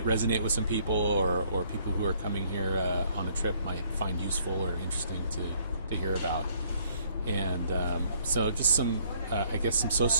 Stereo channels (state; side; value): inverted; both; correlation -0.64